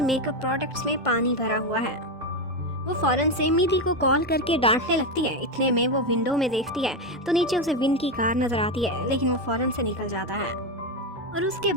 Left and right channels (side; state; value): both; normal; correlation 0.10